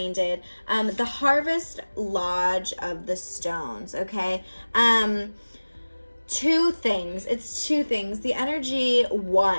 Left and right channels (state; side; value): inverted; both; correlation -1.00